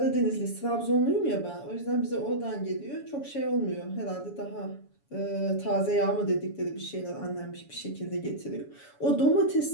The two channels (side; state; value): right; late; 7.1 ms